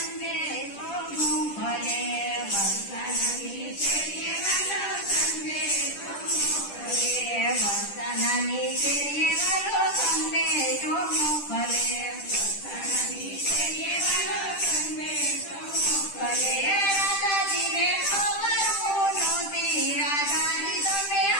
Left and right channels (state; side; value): late; right; 10 ms